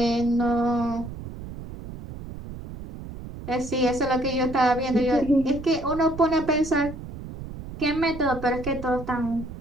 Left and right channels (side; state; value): right; noise; rumble, 11 dB below the sound